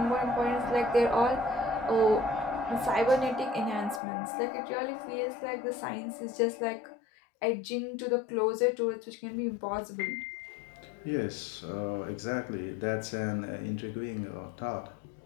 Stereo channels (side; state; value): right; drops out; at 4.0 s